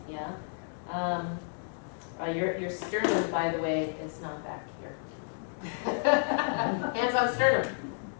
yeah? Your sternum, by the way, is not back here. Hands on sternum.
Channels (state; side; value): silent; right; digital silence